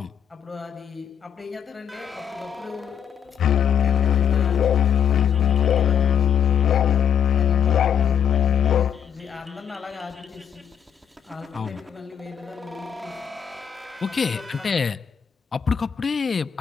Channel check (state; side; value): quieter; right; 8.1 dB